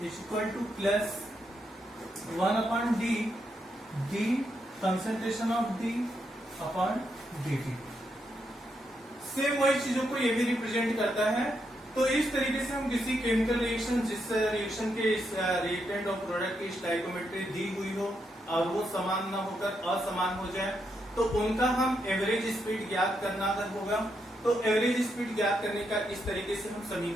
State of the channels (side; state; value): both; normal; correlation 0.80